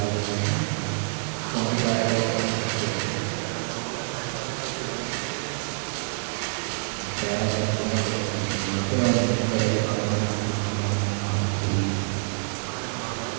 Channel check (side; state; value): left; silent; digital silence